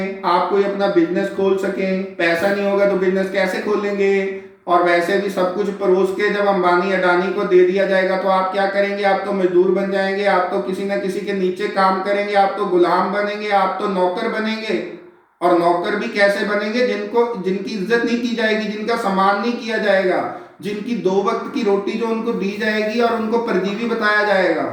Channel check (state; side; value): identical; both; correlation 1.00